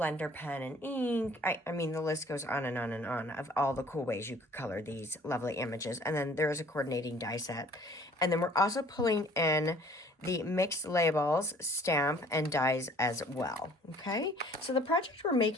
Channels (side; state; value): both; normal; correlation 0.54